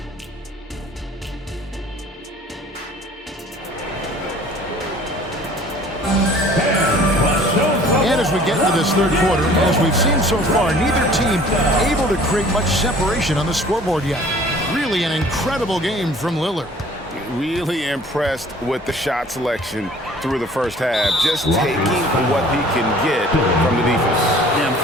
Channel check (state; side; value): normal; both; correlation 0.50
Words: get into this third quarter, as we've seen so far, neither team able to create much separation on the scoreboard yet. Really an incredible game from Lillard. Really impressed with the shot selection through the first half. Just taking what he can get from the defense. Yeah, I'm